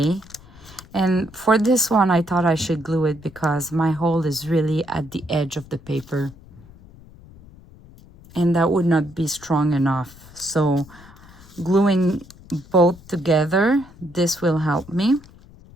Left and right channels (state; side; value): noise; left; rumble, 22 dB below the sound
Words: And for this one, I thought I should glue it because my hole is really at the edge of the paper, and that would not be strong enough. So gluing both together, this will help me.